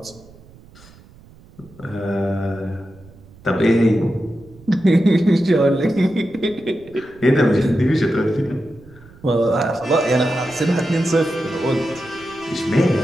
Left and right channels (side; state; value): right; noise; rumble, 24 dB below the sound